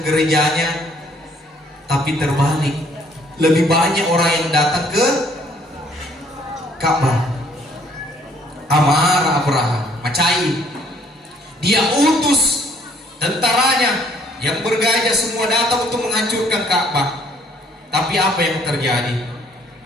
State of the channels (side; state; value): both; normal; correlation 0.62